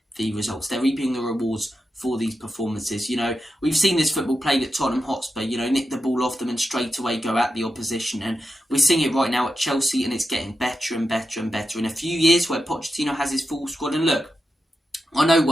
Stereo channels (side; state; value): both; normal; correlation 0.89